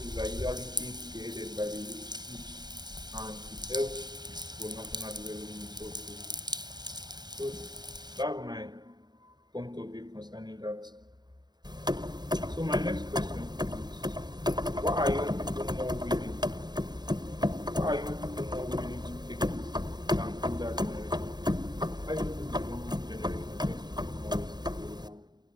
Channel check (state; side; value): late; left; 0.20 ms